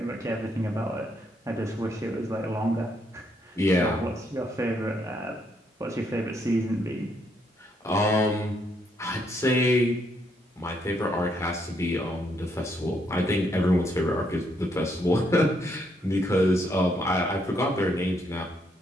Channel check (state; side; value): normal; both; correlation 0.74